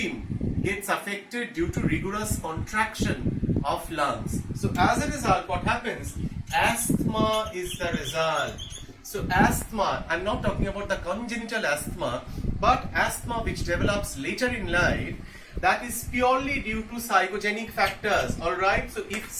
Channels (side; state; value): both; identical; correlation 1.00